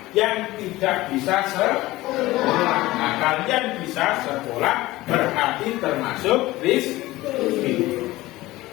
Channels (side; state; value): right; quieter; 18.2 dB